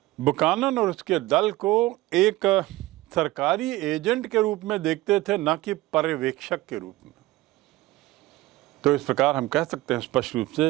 बुकानन और उसके दल को एक सरकारी एजेंट के रूप में देखते थे, न कि पर्यवेक्षक के रूप में। तो इस प्रकार हम कह सकते हैं स्पष्ट रूप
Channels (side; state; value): left; quieter; 18.2 dB